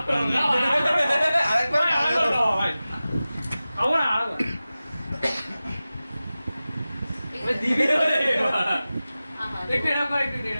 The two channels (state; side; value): inverted; both; correlation -0.96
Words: আরেকবার দিবি একটু